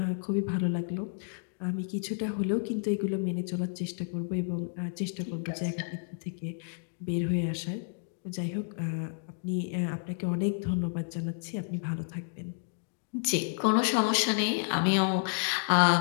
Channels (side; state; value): right; silent; digital silence